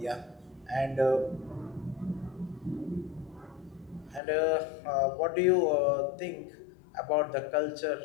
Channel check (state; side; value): drops out; right; at 4.2 s